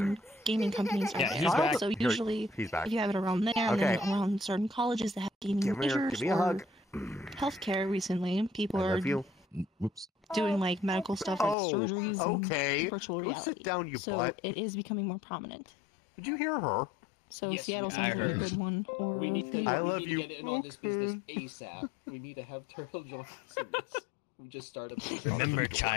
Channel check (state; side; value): drops out; right; at 11.6 s